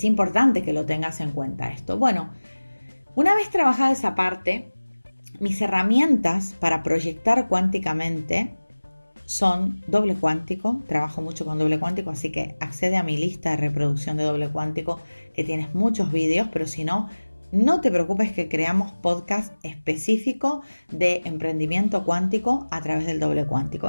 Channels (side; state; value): both; inverted; correlation -1.00